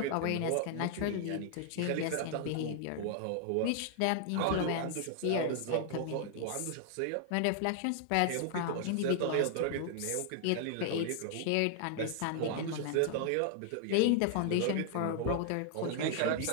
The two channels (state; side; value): different; both; correlation 0.00